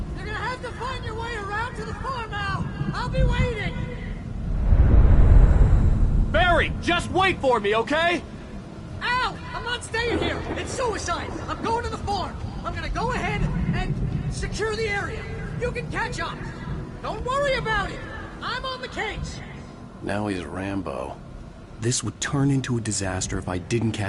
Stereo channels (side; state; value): both; identical; correlation 1.00